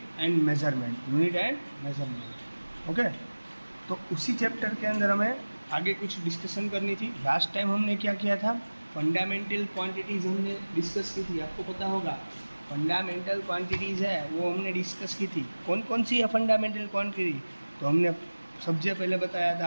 एंड मेजरमेंट। ओके, तो उसी चैप्टर के अंदर हमें आगे कुछ डिस्कशन करनी थी। लास्ट टाइम हमने क्या किया था? फंडामेंटल क्वांटिटीज़ हमने डिस्कस की थी। आपको पता होगा फंडामेंटल क्वांटिटीज़ है वो हमने डिस्कस की थी। कौन कौन सी है फंडामेंटल क्वांटिटी? तो हमने सबसे पहले बताया था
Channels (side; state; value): both; inverted; correlation -1.00